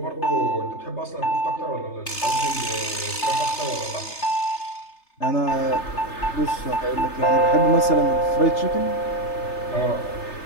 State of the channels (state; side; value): late; right; 3.3 ms